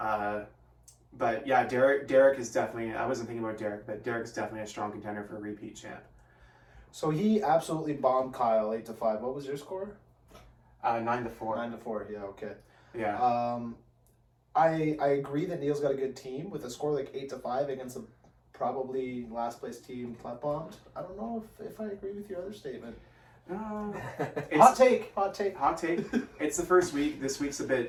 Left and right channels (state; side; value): identical; both; correlation 1.00